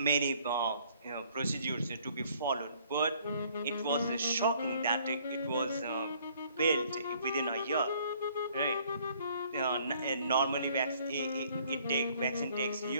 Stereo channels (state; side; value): inverted; both; correlation -0.61